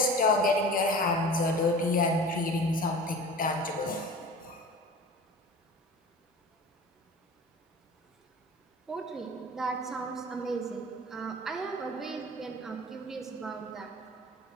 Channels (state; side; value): normal; both; correlation 0.38